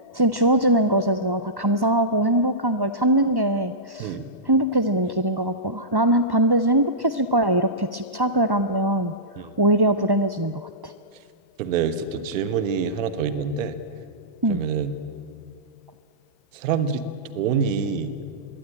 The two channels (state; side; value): late; left; 1.1 ms